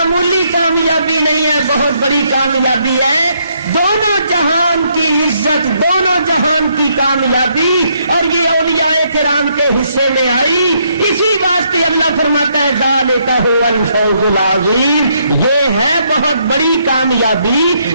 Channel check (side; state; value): both; inverted; correlation -0.73